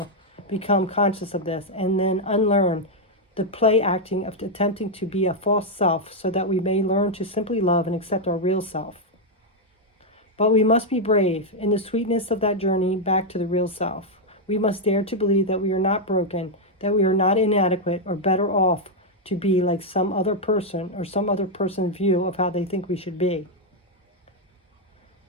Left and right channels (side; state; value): both; normal; correlation -0.01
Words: become conscious of this and then unlearn the play acting of attempting to be a false self so that we may learn to simply love and accept our real self. But we must be brave in the sweetness of that journey back to the real self. We must dare to believe that we are not broken, that we are not inadequate or better off to be like some other person or some other person's view of how they think we should be.